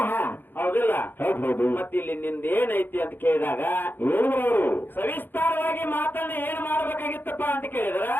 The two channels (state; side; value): late; right; 0.095 ms